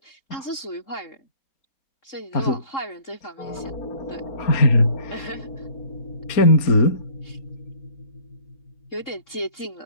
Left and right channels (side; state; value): right; late; 3.7 ms